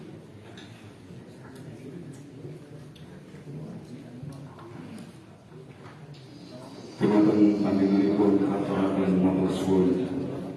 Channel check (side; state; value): both; identical; correlation 1.00